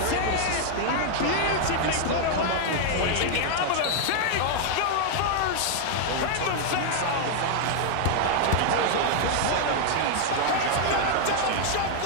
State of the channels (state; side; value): different; both; correlation 0.00